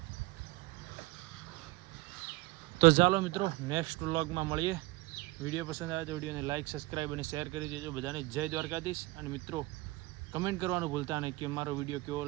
તો ચાલો મિત્રો નેક્સ્ટ વ્લોગમાં મળીએ. વિડીયો પસંદ આવે તો વિડીયોને લાઇક સબસ્ક્રાઈબ અને શેર કરી દેજો. બધાને જય દ્વારકાધીશ. અને મિત્રો કમેન્ટ કરવાનું ભૂલતા નહીં કે મારો વિડીયો કેવો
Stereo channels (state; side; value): quieter; left; 21.0 dB